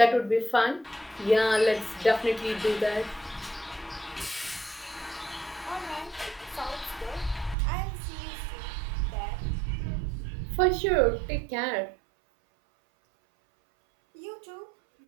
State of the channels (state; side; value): drops out; left; at 7.6 s